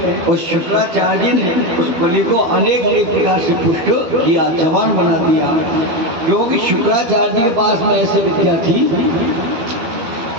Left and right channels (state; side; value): late; left; 12 ms